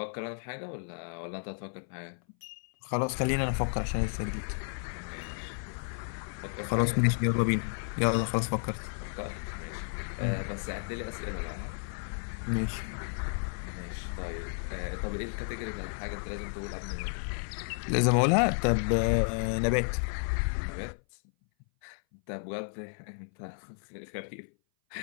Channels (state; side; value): silent; right; 56 dB below the other